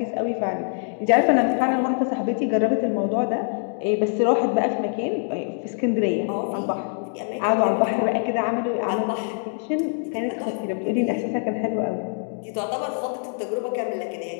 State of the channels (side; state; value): right; silent; 57 dB below the other